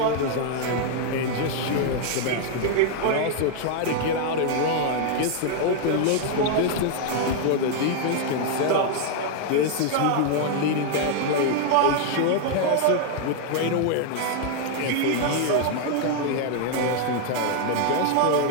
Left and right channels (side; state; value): both; different; correlation 0.00